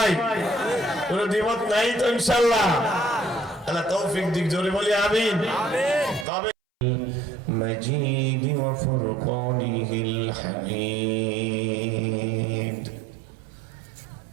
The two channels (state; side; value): drops out; left; at 6.2 s